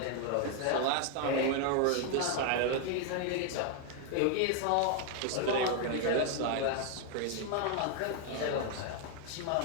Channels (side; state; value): both; different; correlation 0.00